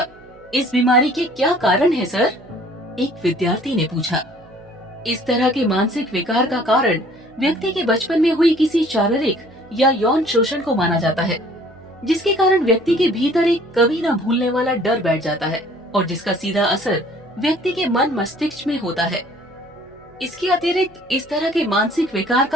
इस बीमारी के क्या कारण है सर? एक विद्यार्थी ने पूछा। इस तरह के मानसिक विकार का कारण व्यक्ति के बचपन में हुई किसी शारीरिक या यौन शोषण को माना जाता है, जिसके कारण व्यक्ति के भीतर एक कभी न भूलने वाला डर बैठ जाता है और जिसका सीधा असर व्यक्ति के मन मस्तिष्क में होता है। इसके अतिरिक्त इस तरह के मानसिक विकार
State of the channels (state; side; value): noise; right; hum, 29 dB below the sound